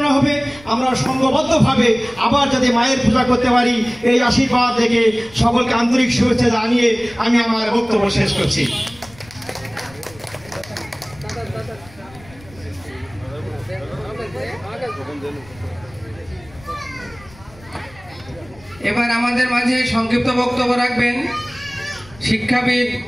হবে, আমরা সংঘবদ্ধভাবে আবার যাতে মায়ের পূজা করতে পারি, এই আশীর্বাদ থেকে সকলকে আন্তরিক শুভেচ্ছা জানিয়ে আমি আমার বক্তব্য শেষ করছি। এবার আমাদের মাঝে সংক্ষিপ্ত বক্তব্য রাখবেন শিক্ষাবিদ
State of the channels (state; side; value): noise; left; rumble, 23 dB below the sound